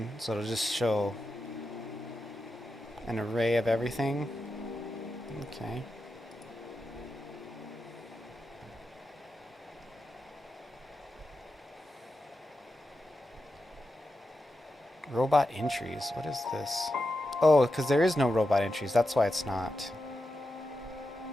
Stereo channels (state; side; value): normal; both; correlation 0.89